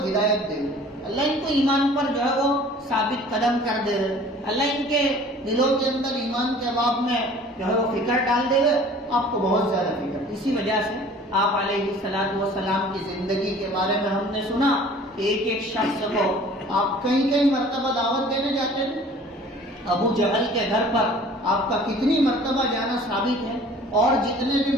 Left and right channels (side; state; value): both; normal; correlation 0.48